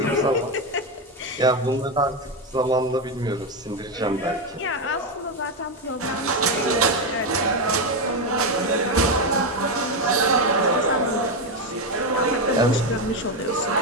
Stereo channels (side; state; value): both; normal; correlation 0.09